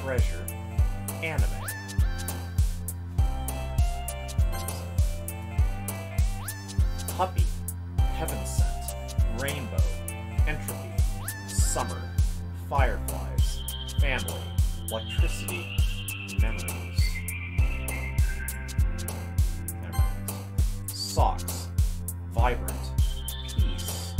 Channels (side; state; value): both; identical; correlation 1.00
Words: anime. Puppy, heaven sent, rainbow, entropy, summer, fireflies, family, electricity, memories. Socks, vibrant, peace,